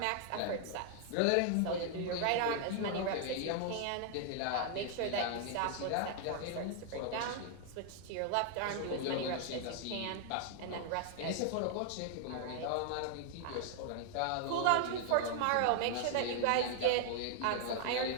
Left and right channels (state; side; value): different; both; correlation 0.00